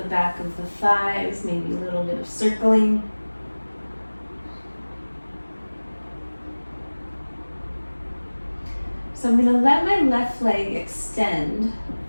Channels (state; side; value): inverted; both; correlation -1.00